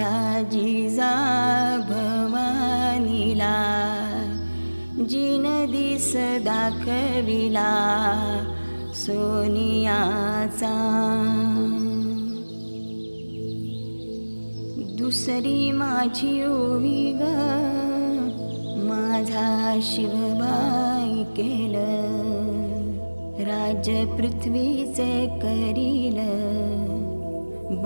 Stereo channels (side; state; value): both; inverted; correlation -1.00